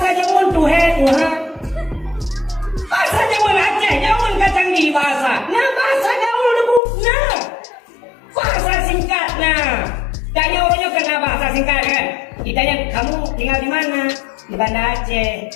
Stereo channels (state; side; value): drops out; right; at 6.8 s